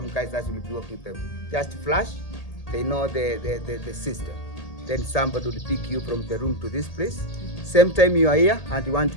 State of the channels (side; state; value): right; late; 1.8 ms